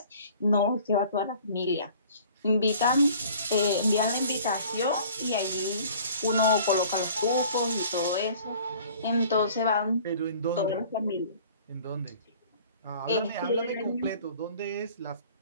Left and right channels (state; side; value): inverted; both; correlation -0.50